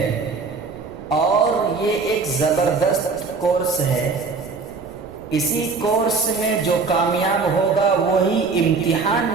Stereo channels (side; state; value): left; quieter; 4.6 dB